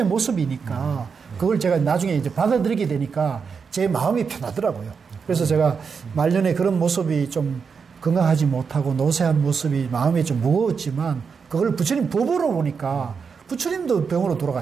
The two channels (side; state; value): left; quieter; 5.8 dB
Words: 모습이니까 그걸 제가 나중에 이제 받아들이게 되니까 제 마음이 편하더라고요. 그래서 제가 말년에 그런 모습이 좀 건강하지 못하고 노쇠한 모습이 마음이 좀 무거웠지만 그걸 부처님 법으로 보니까 부처님도 병으로